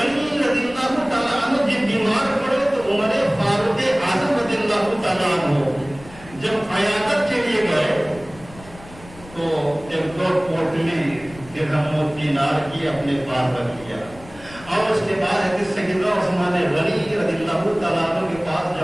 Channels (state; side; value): noise; left; rumble, 20 dB below the sound